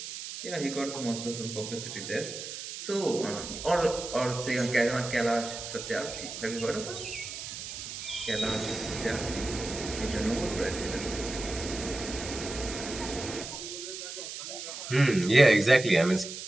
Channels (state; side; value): noise; right; hiss, 8 dB below the sound